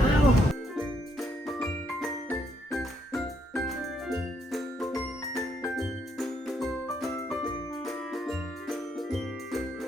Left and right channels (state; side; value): normal; both; correlation 0.74